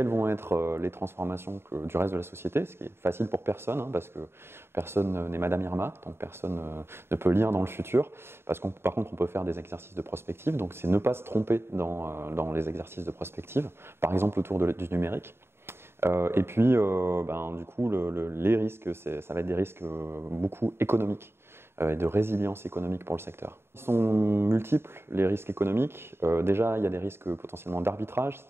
vont être les transformations du reste de la société, ce qui est facile pour personne, hein, parce que personne n'est Madame Irma, donc personne ne peut lire dans le futur. Par contre, on peut faire des exercices de prospective, donc c'est ne pas se tromper dans les exercices de prospective, par exemple autour du numérique. Et puis, du coup, les risques, ça va être des risques beaucoup économiques et de résilience économique pour le secteur. Ils sont multiples, les risques économiques. Déjà, il y a des risques potentiellement d'arbitrage,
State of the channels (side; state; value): left; late; 0.12 ms